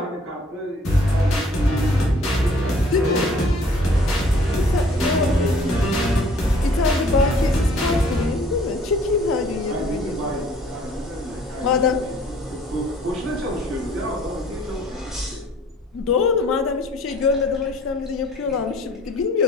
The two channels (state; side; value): normal; both; correlation 0.55